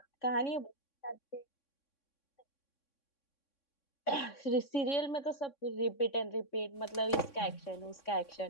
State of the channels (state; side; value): late; right; 3.6 ms